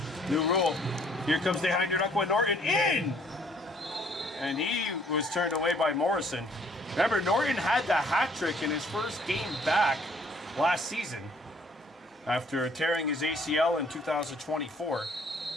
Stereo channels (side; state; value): both; normal; correlation 0.61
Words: New rule. Here comes Dehahande Norton in! And he was turned away by Morrison. Remember, Norton had the hat trick in his first game back last season after tearing his ACL in 2024.